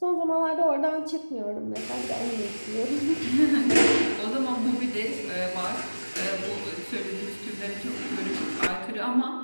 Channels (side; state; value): both; inverted; correlation -1.00